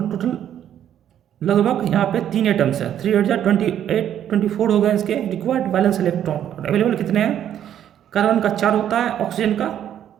टोटल लगभग यहाँ पे 3 एटम्स है, 3 8 28 24 हो गए इसके रिक्वायर्ड वैलेंस इलेक्ट्रॉन। और अवेलेबल कितने हैं, कार्बन का 4 होता है, ऑक्सीजन का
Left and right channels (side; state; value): left; quieter; 10.3 dB